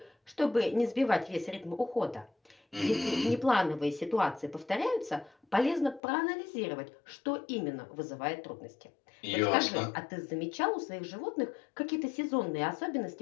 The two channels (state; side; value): drops out; right; at 6.0 s